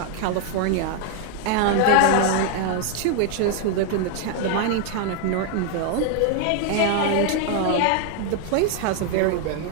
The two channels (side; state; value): both; different; correlation 0.00